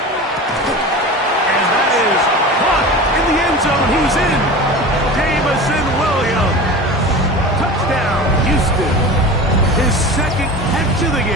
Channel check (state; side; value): normal; both; correlation 0.33